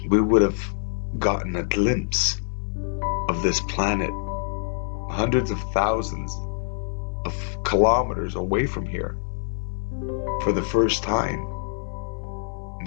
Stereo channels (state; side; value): silent; right; 58 dB below the other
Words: We would have gotten a glimpse of this planet hundreds of thousands of kilometers away from here for the first time,